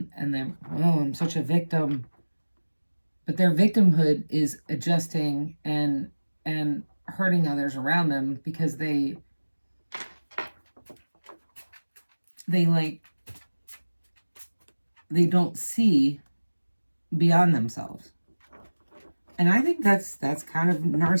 then, I'm such a victim. But their victimhood is adjusting and hurting others around them because they don't see beyond themselves. And I think that's kind of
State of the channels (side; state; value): both; inverted; correlation -1.00